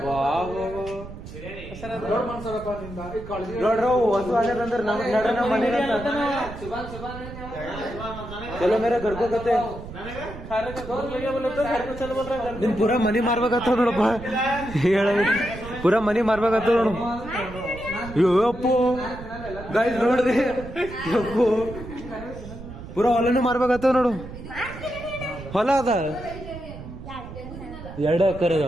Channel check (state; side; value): noise; right; rumble, 12 dB below the sound